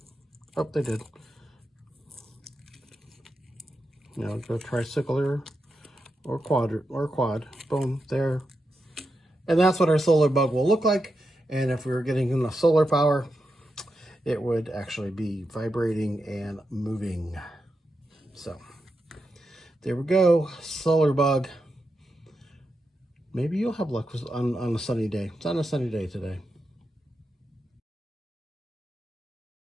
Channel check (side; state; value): both; normal; correlation 0.87